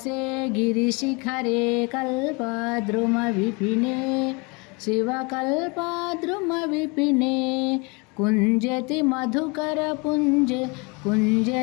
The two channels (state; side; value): quieter; right; 29.6 dB